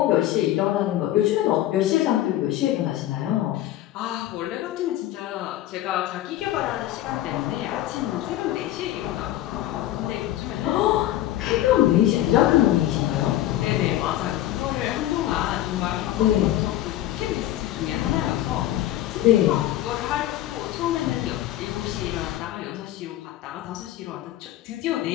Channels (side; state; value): right; quieter; 13.7 dB